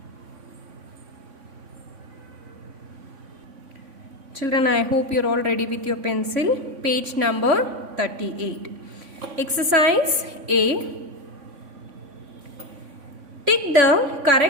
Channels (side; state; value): left; late; 3.5 ms